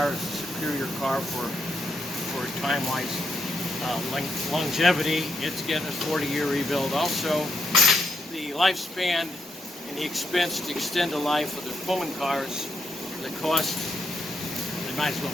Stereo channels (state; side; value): normal; both; correlation 0.79